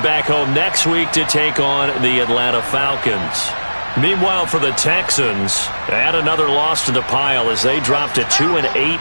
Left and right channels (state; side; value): inverted; both; correlation -1.00